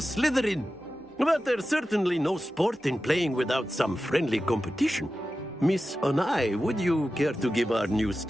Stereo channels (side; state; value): both; normal; correlation 0.93